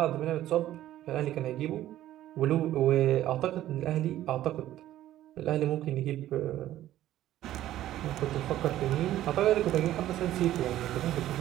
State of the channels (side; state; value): left; quieter; 13.4 dB